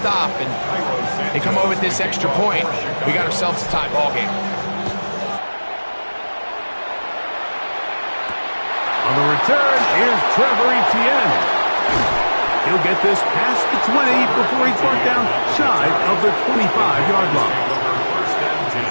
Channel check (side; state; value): both; inverted; correlation -1.00